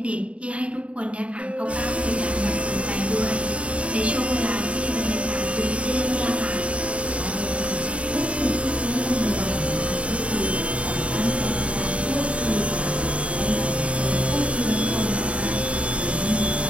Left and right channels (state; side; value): late; left; 0.063 ms